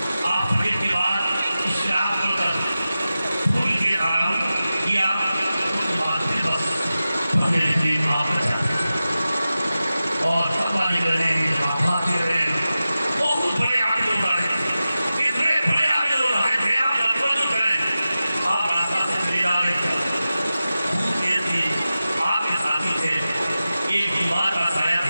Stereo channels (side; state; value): both; inverted; correlation -0.94